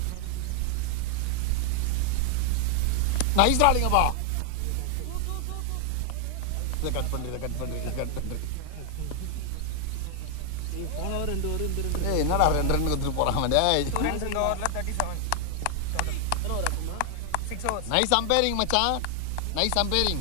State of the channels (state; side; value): different; both; correlation 0.00